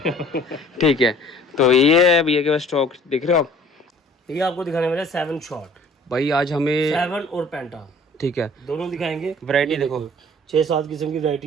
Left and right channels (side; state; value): both; normal; correlation 0.51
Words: ठीक है, तो ये है भैया के पास स्टॉक, देख रहे हो आप? ये आपको दिखाने वाले 7 शॉट भाई आज हमें 7 और पेंटा ठीक है दोनों दिखाएंगे। वैरायटी देखो, 6-7 किस्म की